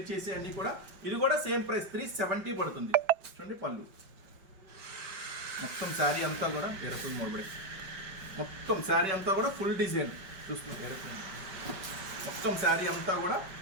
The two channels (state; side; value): late; left; 5.2 ms